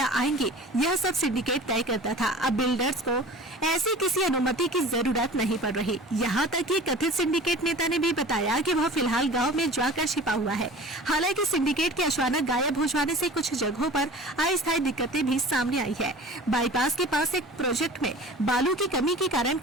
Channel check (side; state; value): both; normal; correlation 0.41